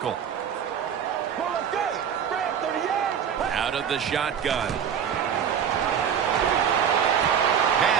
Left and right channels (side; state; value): left; quieter; 8.1 dB